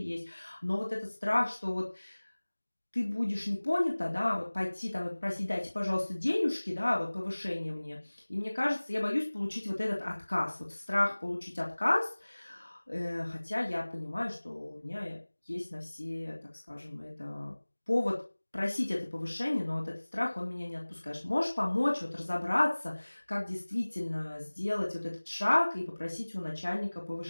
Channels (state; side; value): inverted; both; correlation -1.00